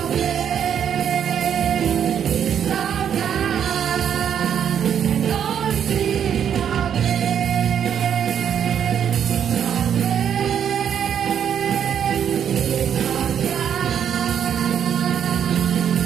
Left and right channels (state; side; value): quieter; left; 8.7 dB